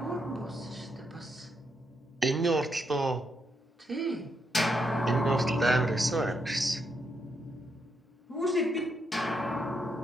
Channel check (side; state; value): both; normal; correlation 0.79